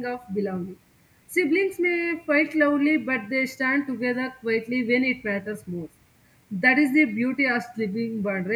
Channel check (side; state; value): both; identical; correlation 1.00